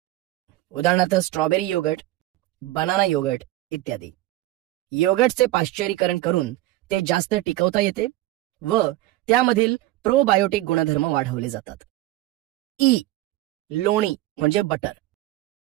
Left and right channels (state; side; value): quieter; left; 16.6 dB